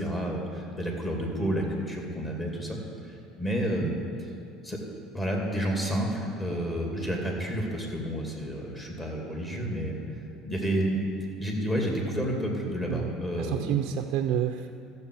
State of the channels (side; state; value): both; normal; correlation 0.57